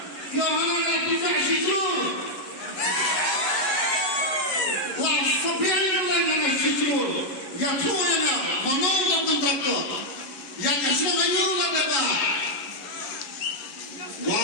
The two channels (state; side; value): late; right; 11 ms